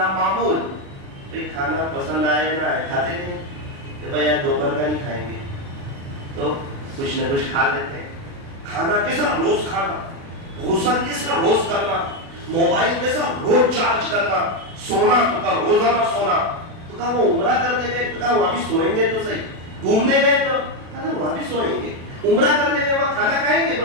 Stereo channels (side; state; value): left; late; 36 ms